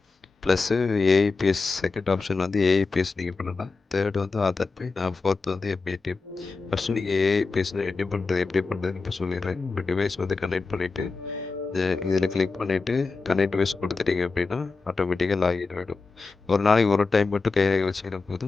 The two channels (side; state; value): right; quieter; 4.1 dB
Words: ப்ளஸ்ஸு ஏஐபிஎஸ் செகண்ட் ஆப்ஷன் வந்து ஏஐபிஎஸ் நீங்க பண்ணலாம். தேர்ட் வந்து ஆதார் பே. ஃபோர்த் வந்து எம்ஏடிஎம். ஃபர்ஸ்ட்டு நீங்க ஏஐபிஎஸ்ல எப்படி பண்றதுன்னு இப்ப சொல்லிடுறேன். உங்க டிவைஸ் வந்து கனெக்ட் பண்ணிட்டு இதில் கிளிக் பண்ணிவிட்டு கனெக்ட் வைஸ் கொடுத்துட்டீங்க அப்படின்னா ஆட்டோமேட்டிக்காக லாகின் ஆகிடும். ஒரு நாளைக்கு ஒரு டைம் மட்டும் கைரேகை வச்சுக்கிற